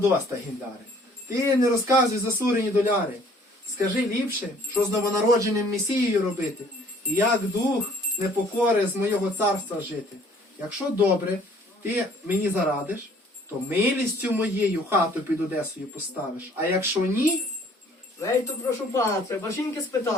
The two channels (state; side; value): normal; both; correlation 0.57